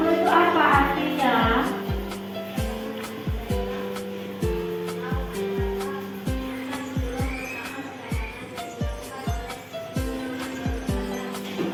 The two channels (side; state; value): both; identical; correlation 1.00